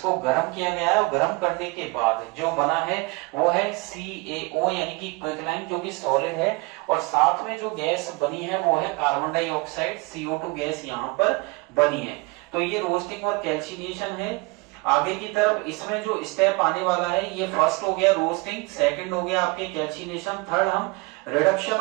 गर्म किया गया है और गर्म करने के बाद जो बना है वो है CaO यानी कि क्विकलाइम जो कि सॉलिड है, और साथ में जो गैस बनी है वो है कार्बन डाइऑक्साइड, CO2 गैस यहाँ पर बनी है। तो ये रोस्टिंग और कैल्सिनेशन है। आगे की तरफ इसमें जो स्टेप आने वाला है, ये फर्स्ट हो गया रोस्टिंग, सेकंड हो गया आपके कैल्सिनेशन, थर्ड हम रिडक्शन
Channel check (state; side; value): quieter; left; 26.4 dB